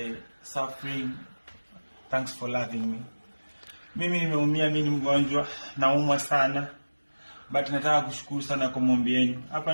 suffering. Thanks for loving me. Mimi nimeumia, mimi ni mgonjwa, naumwa sana. But nataka kushukuru sana kwa maombi yenu. Hapa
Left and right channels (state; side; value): inverted; both; correlation -1.00